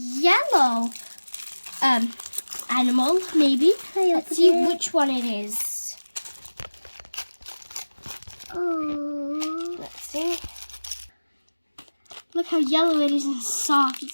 animal, maybe. Let's see which one it is. Oh. Let's see. Look how yellow it is and soft.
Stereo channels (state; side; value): inverted; both; correlation -1.00